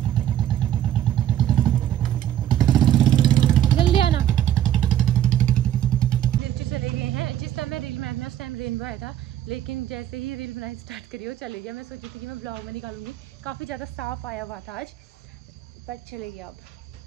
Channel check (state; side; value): quieter; left; 11.5 dB